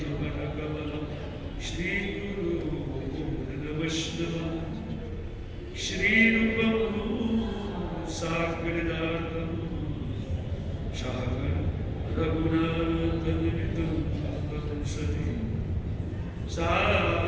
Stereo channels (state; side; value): identical; both; correlation 1.00